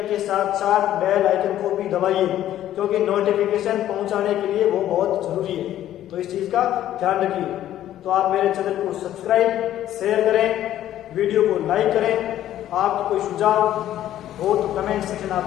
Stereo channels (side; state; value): right; quieter; 12.4 dB